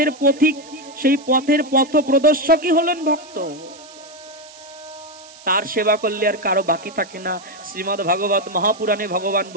পথিক, সেই পথের পথ প্রদর্শকই হলেন ভক্ত। তার সেবা করলে আর কারো বাকি থাকে না। শ্রীমদ্ ভাগবত মহাপুরাণে ভগবান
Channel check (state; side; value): noise; right; hiss, 21 dB below the sound